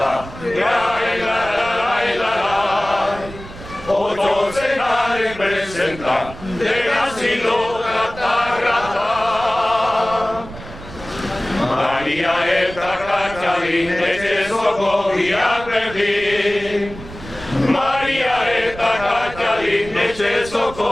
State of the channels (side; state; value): right; noise; rumble, 15 dB below the sound